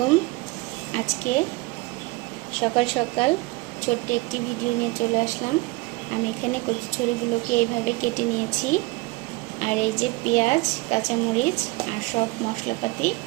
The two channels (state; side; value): quieter; left; 23.3 dB